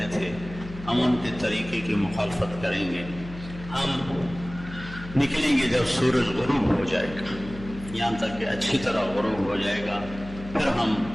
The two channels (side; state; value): left; noise; hum, 13 dB below the sound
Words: تھے، ہم ان کے طریقے کی مخالفت کریں گے، ہم نکلیں گے جب سورج غروب ہو جائے گا، یہاں تک کہ اچھی طرح غروب ہو جائے گا، پھر ہم